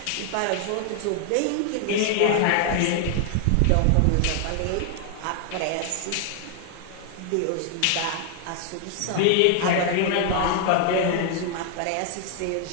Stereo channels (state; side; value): different; both; correlation 0.00